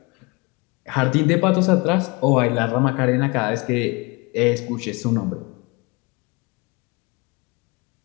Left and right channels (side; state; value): right; quieter; 27.2 dB